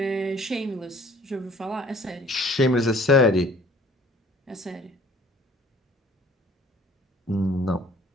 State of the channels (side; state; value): both; normal; correlation 0.54